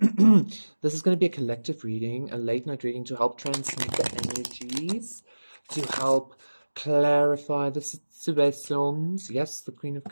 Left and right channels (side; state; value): both; inverted; correlation -1.00